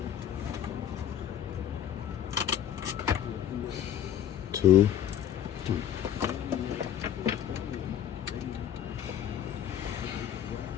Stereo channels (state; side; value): quieter; right; 10.1 dB